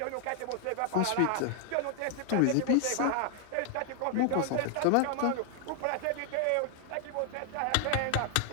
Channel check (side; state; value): both; different; correlation 0.00